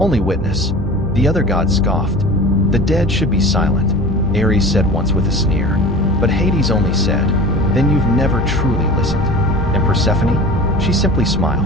witness. The other gods scoffed. "The dead should be silent," Ares said once with a sneer. But Hades only said, "Then you've never truly listened." And Persephone? She simply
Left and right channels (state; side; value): normal; both; correlation 0.37